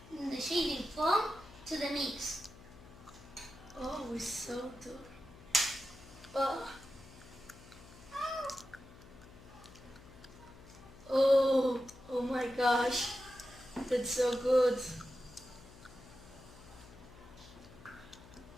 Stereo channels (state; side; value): noise; left; hum, 19 dB below the sound